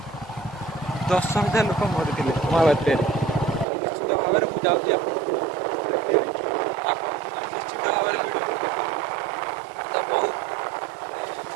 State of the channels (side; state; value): left; drops out; at 3.7 s